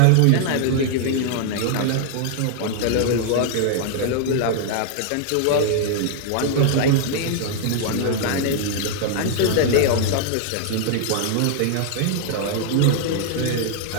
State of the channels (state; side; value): different; both; correlation 0.00